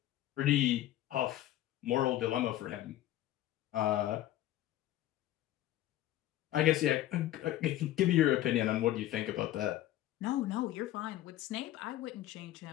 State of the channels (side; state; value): right; quieter; 13.9 dB